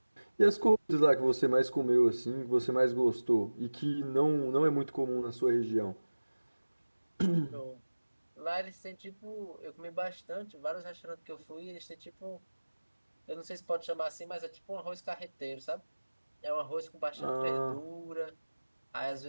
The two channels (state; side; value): inverted; both; correlation -1.00